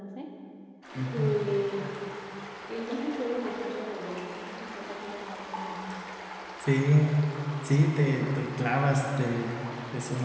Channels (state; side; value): identical; both; correlation 1.00